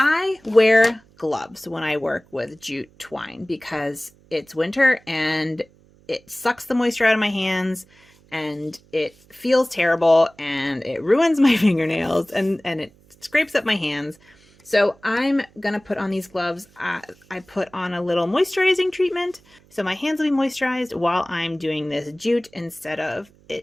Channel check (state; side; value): noise; right; hum, 29 dB below the sound